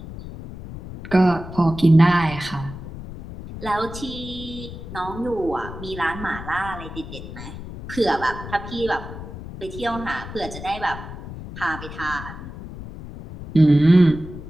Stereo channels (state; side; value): noise; left; rumble, 11 dB below the sound